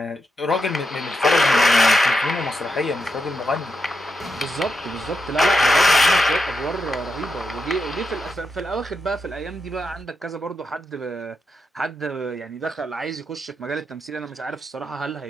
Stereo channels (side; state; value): both; normal; correlation 0.86